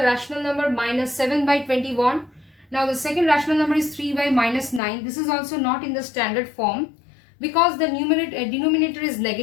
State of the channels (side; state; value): right; drops out; at 4.8 s